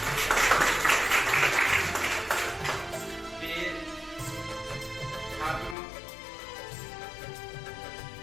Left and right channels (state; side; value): drops out; right; at 5.8 s